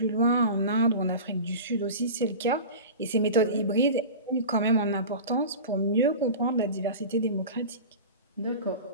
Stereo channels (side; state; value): both; inverted; correlation -0.32